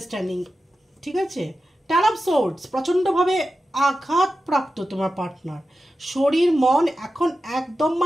ঠিক আছে, টেন অফ সোর্ডস, প্রচণ্ডভাবে আঘাতপ্রাপ্ত তোমার পার্টনার, শরীর মন এখন একদম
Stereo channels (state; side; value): normal; both; correlation 0.92